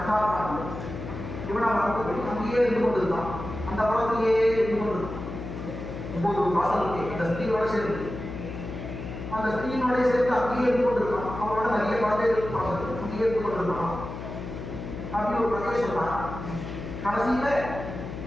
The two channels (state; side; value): noise; left; hum, 8 dB below the sound